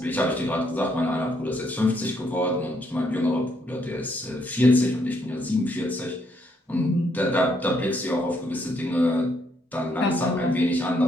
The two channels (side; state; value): both; normal; correlation 0.73